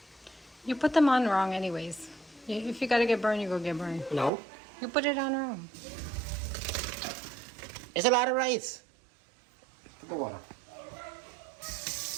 You put them on wrong anyways. If you gotta get burned, you go get burned. No. You put it on wrong. It's a lot of rice. the water.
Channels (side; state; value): left; drops out; at 4.3 s